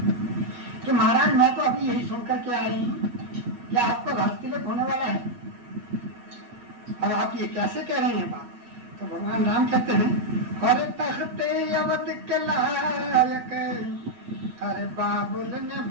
कि महाराज मैं तो अभी यही सुनकर के आई हूँ कि आपका राजतिलक होने वाला है और आप ये कैसे कह रहे हैं बात। तो भगवान राम कहते हैं, हर तख्ते अवध के लायक हर बाबुल ने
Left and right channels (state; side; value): late; left; 8.4 ms